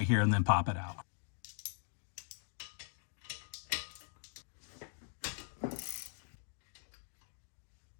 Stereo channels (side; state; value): right; silent; 51 dB below the other